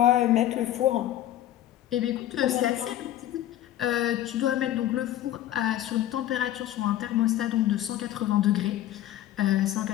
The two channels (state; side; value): quieter; right; 12.9 dB